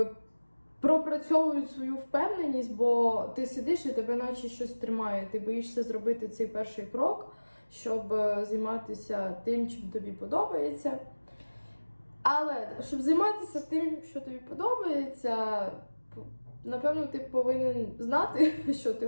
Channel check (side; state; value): both; inverted; correlation -1.00